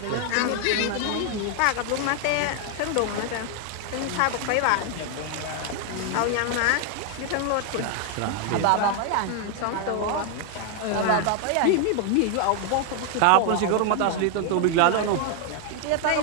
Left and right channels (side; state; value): both; different; correlation 0.00